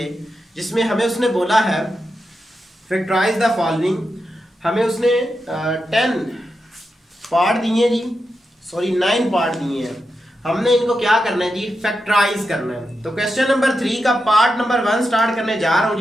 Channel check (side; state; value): both; normal; correlation 0.88